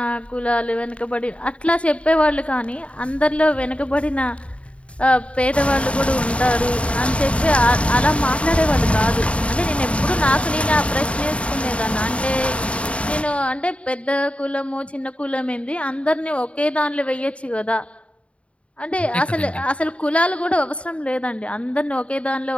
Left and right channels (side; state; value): right; late; 0.062 ms